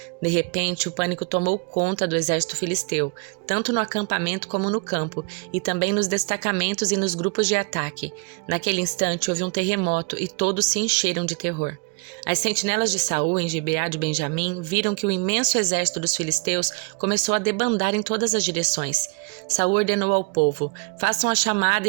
De repente, o pânico tomou conta do exército filisteu, tanto no acampamento como no campo, e também nos destacamentos e nos grupos de ataque. Naquele instante houve um terremoto e todos se encheram de terror. As sentinelas de Saul em Gibeá de Benjamim viram que o imenso exército dos filisteus começou a debandar em todas as direções. Saul ordenou ao povo: façam a chamada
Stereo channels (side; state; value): left; quieter; 32.5 dB